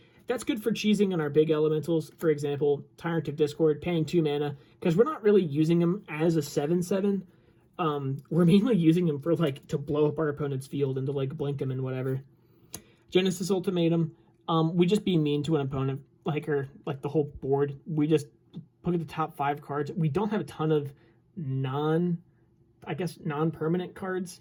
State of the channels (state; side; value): identical; both; correlation 1.00